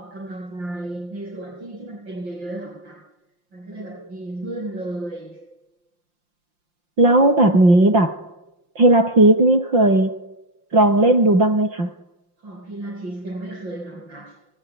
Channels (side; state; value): left; late; 5.7 ms